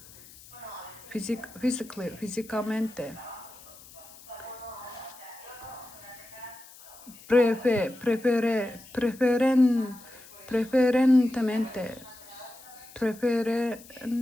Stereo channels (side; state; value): left; noise; hiss, 21 dB below the sound